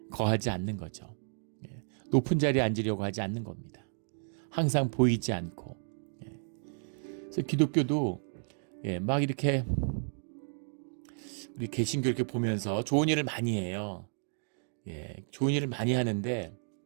거하지 않는 거죠. 높은 자리에 앉으려고 하지 않는 겁니다. 항상 보이지 않고. 그래서 기독교도 막 이렇게 우리 개신교 이렇게 보면서 좋은 일을 많이 해요. 좋은 일을 많이 하는데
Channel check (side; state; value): left; silent; digital silence